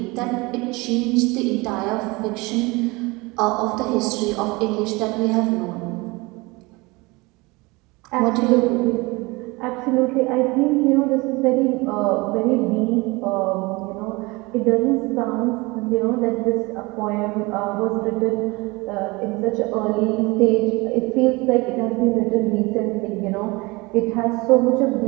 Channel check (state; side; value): quieter; left; 24.3 dB